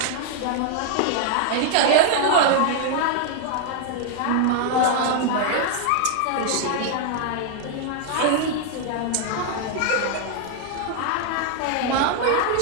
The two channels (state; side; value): different; both; correlation 0.00